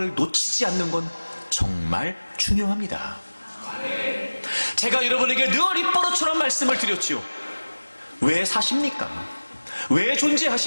놓치지 않는 건 정말 중요합니다. 제가 여러분에게 늘 입버릇처럼 말씀을 드렸지요. 왜 사십니까? 왜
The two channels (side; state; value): both; inverted; correlation -1.00